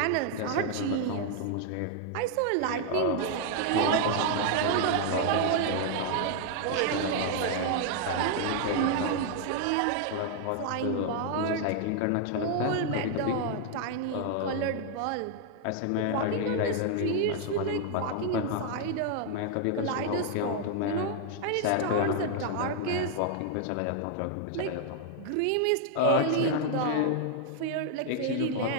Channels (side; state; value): both; different; correlation 0.00